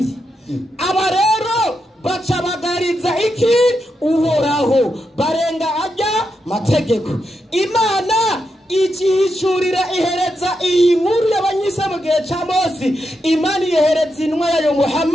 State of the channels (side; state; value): both; normal; correlation 0.85